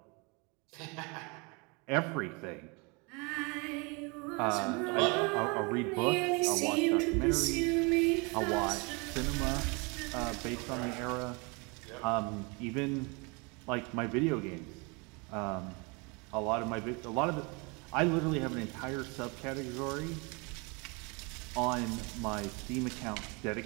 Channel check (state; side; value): quieter; left; 29.9 dB